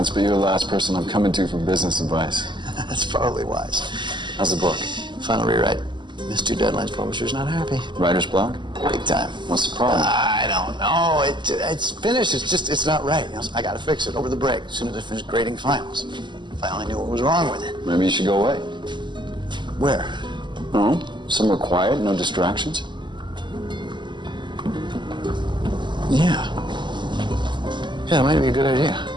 but you're the last person I'm coming to for business advice. That's probably wise. How's the book? Final rewrite. Missed 2 deadlines. Publisher's not happy. Writer's block? Big time. What's the problem? I don't know. It's finished. It's not right. You know, so I got to fix it over the break as soon as I finish grading finals. If I only knew what was wrong with it. Maybe you should go away. Where? No, somewhere quiet, no distractions. Yeah. Yeah, it might be a good idea.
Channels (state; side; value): late; left; 0.22 ms